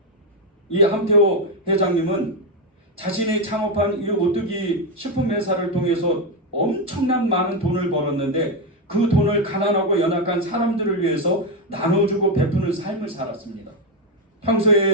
이 함태호 회장님은 자신이 창업한 이 오뚜기 식품회사를 통해서 엄청난 많은 돈을 벌었는데 그 돈을 가난하고 연약한 사람들을 위해서 나눠주고 베푸는 삶을 살았습니다.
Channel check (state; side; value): normal; both; correlation 0.07